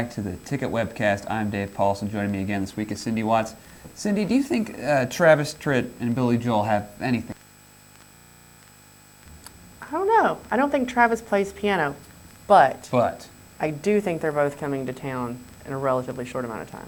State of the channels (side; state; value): both; identical; correlation 1.00